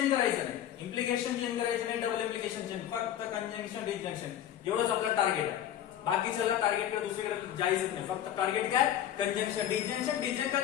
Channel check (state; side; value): quieter; right; 11.0 dB